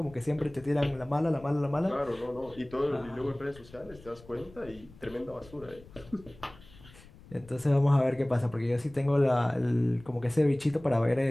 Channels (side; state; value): left; noise; rumble, 22 dB below the sound